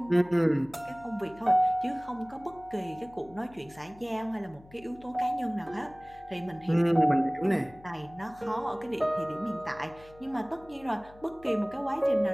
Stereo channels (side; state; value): left; noise; hum, 23 dB below the sound